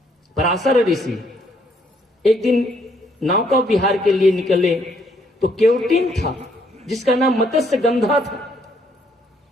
पराशर ऋषि एक दिन नौका विहार के लिए निकले, तो केवटिन था जिसका नाम मत्स्य गंधा था,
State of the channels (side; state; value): both; normal; correlation 0.69